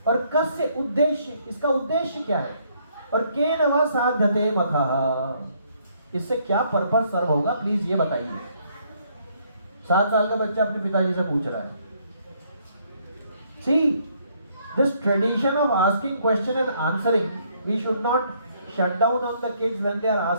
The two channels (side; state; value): both; inverted; correlation -0.68